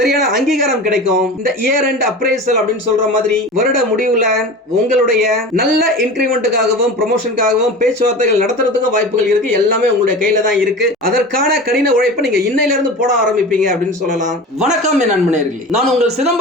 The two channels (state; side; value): normal; both; correlation 0.32